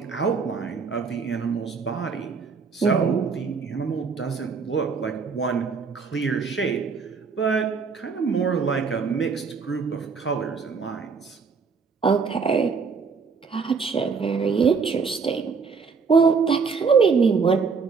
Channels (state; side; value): quieter; left; 5.2 dB